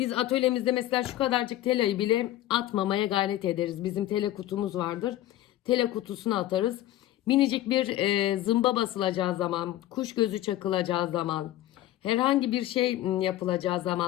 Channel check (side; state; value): right; quieter; 14.1 dB